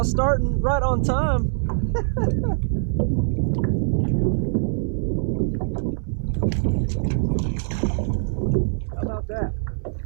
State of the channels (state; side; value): silent; left; digital silence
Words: starting right on time. How about that?